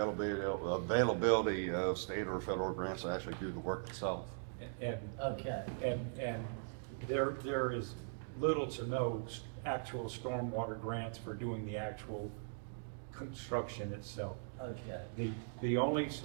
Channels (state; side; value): silent; left; digital silence